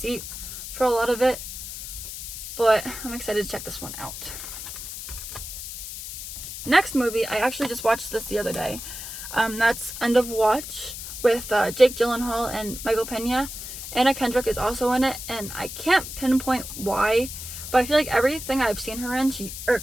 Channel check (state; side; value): noise; left; hiss, 9 dB below the sound